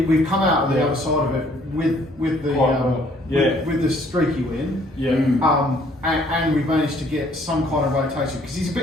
come out of the other side of it with the streaky win. Yeah. And we've managed to get some kind of rotation because he's a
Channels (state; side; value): normal; both; correlation 0.61